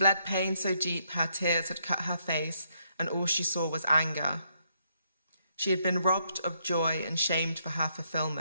pain so deep her tears had cut her face, and all she saw was anger. She had been robbed of joy and shamed for her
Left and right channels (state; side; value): inverted; both; correlation -0.75